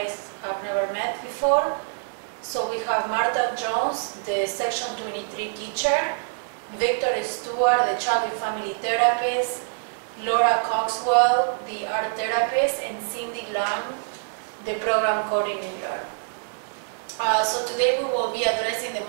have never met before. So we have Martha Jones, the Section 23 teacher, Victor Stewart, the child and family therapist, Laura Coxwell, the art therapist, and Cindy Lam, the program coordinator. So today we will be addressing the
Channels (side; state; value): left; silent; 62 dB below the other